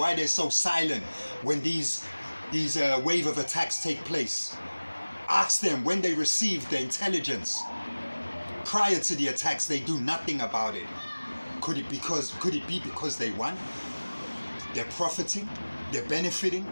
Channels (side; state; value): both; inverted; correlation -1.00